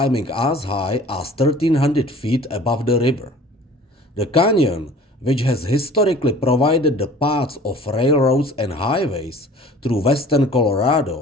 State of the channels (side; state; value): both; normal; correlation 0.47